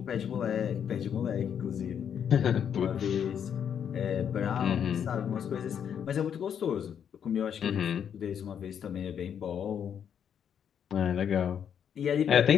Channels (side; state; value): right; quieter; 8.3 dB